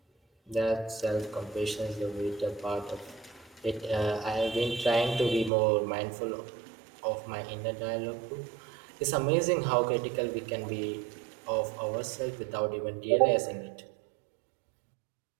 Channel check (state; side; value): drops out; left; at 5.5 s